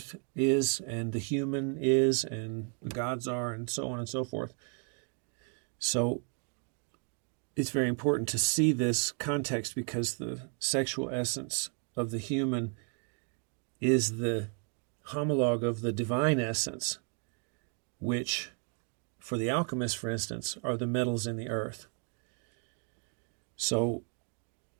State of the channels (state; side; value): quieter; left; 39.5 dB